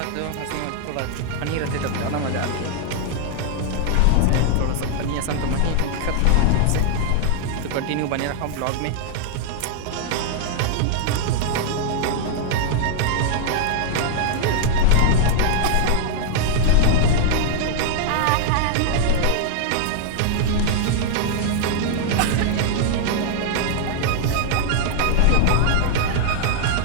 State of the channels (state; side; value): different; both; correlation -0.01